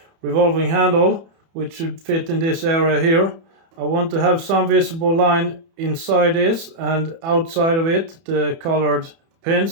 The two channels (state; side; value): late; left; 30 ms